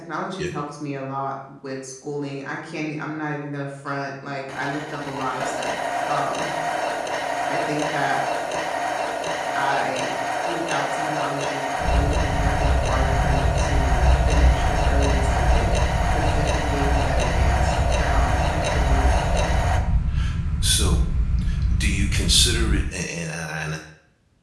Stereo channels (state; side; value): identical; both; correlation 1.00